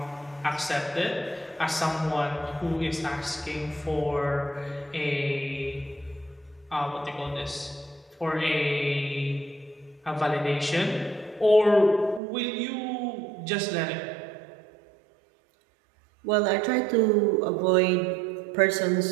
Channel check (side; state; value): left; drops out; at 12.2 s